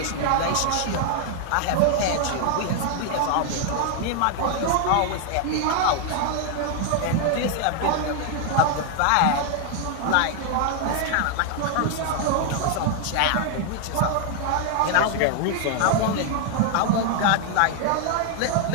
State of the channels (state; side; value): different; both; correlation 0.00